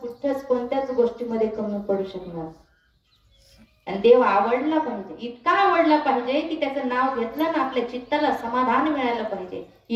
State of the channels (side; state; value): both; identical; correlation 1.00